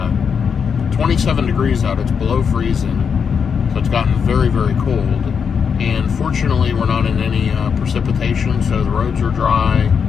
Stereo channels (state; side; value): quieter; right; 6.6 dB